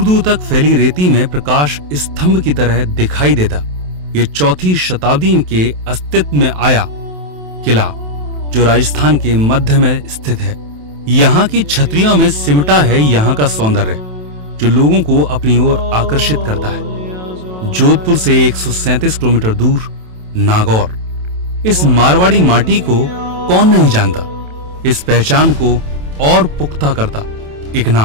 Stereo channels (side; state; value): left; late; 27 ms